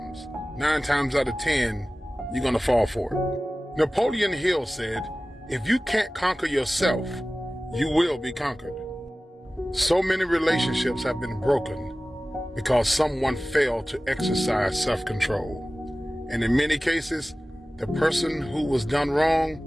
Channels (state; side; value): normal; both; correlation 0.97